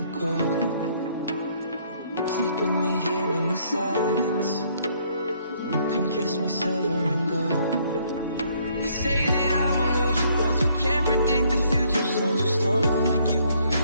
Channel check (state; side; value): inverted; both; correlation -0.66